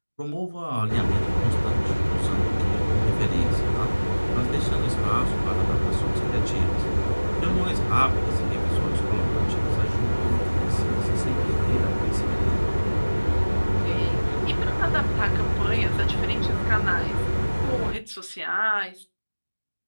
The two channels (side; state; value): both; inverted; correlation -1.00